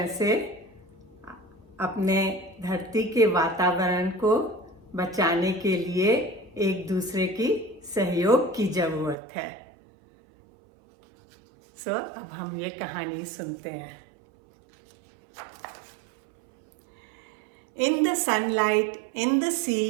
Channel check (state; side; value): drops out; left; at 9.2 s